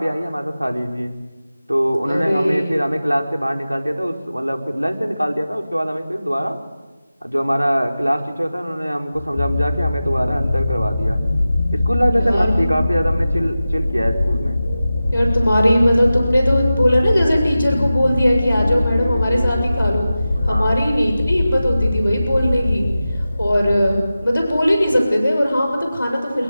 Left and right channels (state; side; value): inverted; both; correlation -0.94